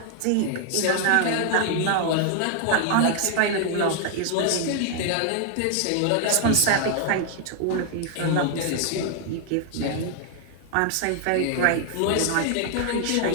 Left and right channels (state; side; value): different; both; correlation 0.00